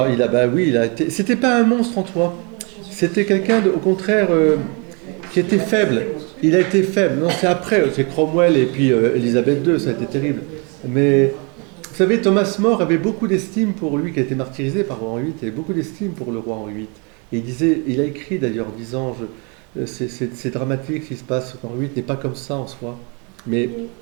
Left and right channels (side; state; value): left; quieter; 33.3 dB